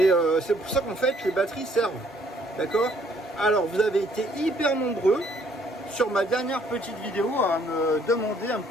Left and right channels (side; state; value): both; normal; correlation 0.64